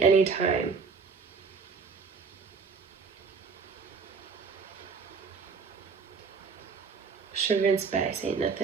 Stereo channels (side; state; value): left; quieter; 5.3 dB